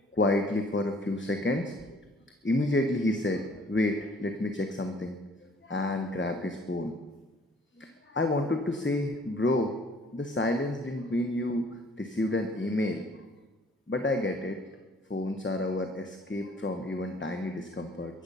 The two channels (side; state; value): both; normal; correlation 0.57